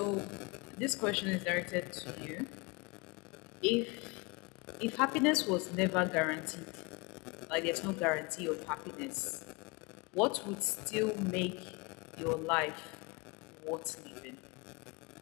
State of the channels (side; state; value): right; quieter; 27.3 dB